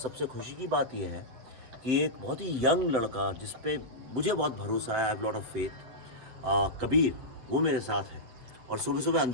खुशी की बात यह है कि एक बहुत ही यंग लड़का जिस पे मुझे बहुत भरोसा है, I have lot of faith, Kabir, वो मेरे साथ है। और सुबह सुबह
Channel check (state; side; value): late; left; 7.8 ms